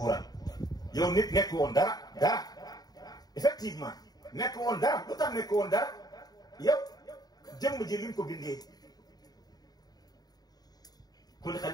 yow nit nekk woon dara effectivement nekk woon dara lu tax nekk woon dara yow jëmm ji liñ ko bindee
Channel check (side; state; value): right; late; 0.19 ms